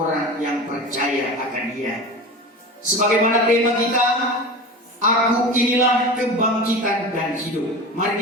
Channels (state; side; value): normal; both; correlation 0.30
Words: yang percaya akan Dia. Sebagaimana tema kita, aku inilah kebangkitan dan hidup.